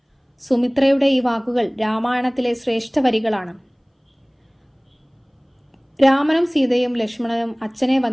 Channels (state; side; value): identical; both; correlation 1.00